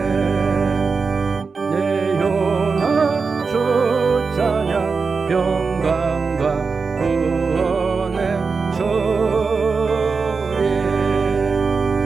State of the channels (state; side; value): quieter; left; 4.8 dB